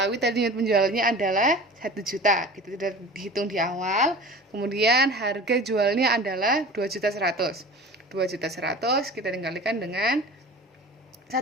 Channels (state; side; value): normal; both; correlation 0.38